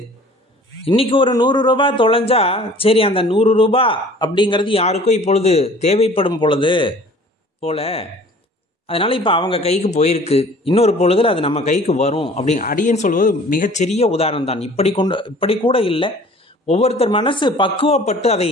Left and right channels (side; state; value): both; normal; correlation 0.49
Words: இன்னைக்கு ஒரு 100 ரூபாய் தொலைஞ்சா சரி அந்த 100 ரூபாய் அப்படிங்கிறது யாருக்கும் இப்பொழுது தேவைப்படும் பொழுது போல, அதனால இப்போ அவங்க கைக்கு போயிருக்கு, இன்னொரு பொழுதுல அது நம்ம கைக்கு வரும் அப்படி அடியேன்னு சொல்வது மிகச்சிறிய உதாரணம் தான். இப்படி கூட இல்லை, ஒவ்வொருத்தர் மனசு பக்குவப்பட்டு அதை